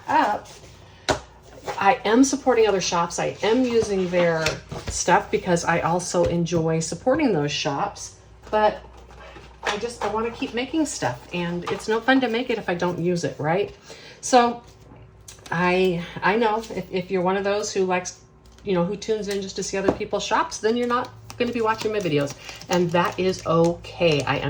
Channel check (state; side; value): identical; both; correlation 1.00